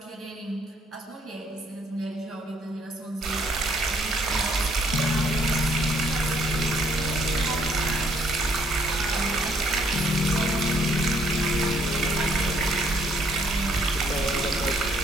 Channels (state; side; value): normal; both; correlation 0.66